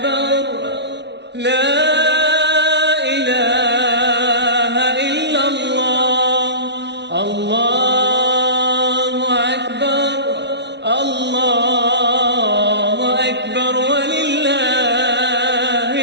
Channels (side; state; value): left; late; 0.50 ms